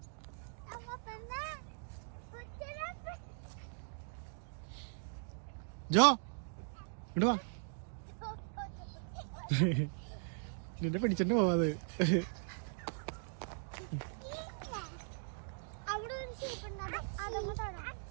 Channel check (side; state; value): left; silent; digital silence